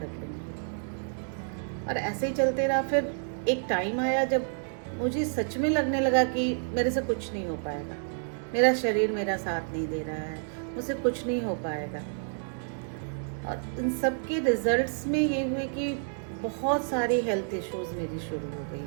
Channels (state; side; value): silent; left; digital silence